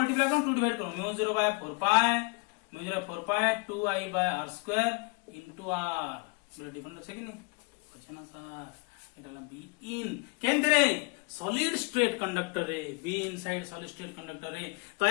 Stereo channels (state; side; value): quieter; right; 31.7 dB